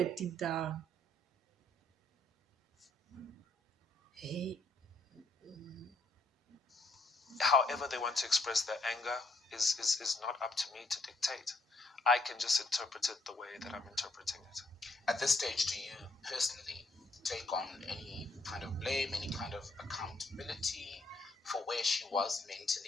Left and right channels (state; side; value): normal; both; correlation 0.71